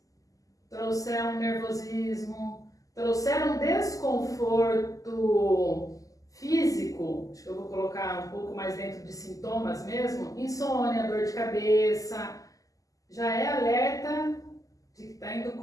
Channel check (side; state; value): right; late; 0.17 ms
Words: trouxer um nervosismo, trouxer um desconforto físico, acho que eu vou colocar um pouco mais dentro de sintomas mesmo, insônia, dor de cabeça, já é alerta de que está indo